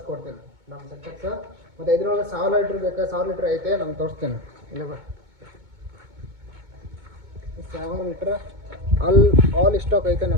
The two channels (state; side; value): late; left; 2.2 ms